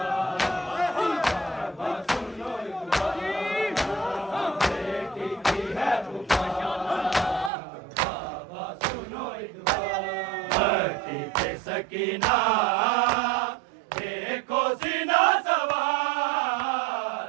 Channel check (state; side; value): drops out; left; at 7.5 s